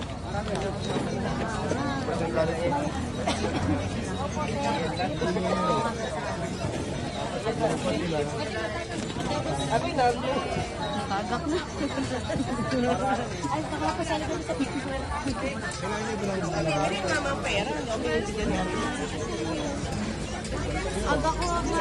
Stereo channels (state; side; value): identical; both; correlation 1.00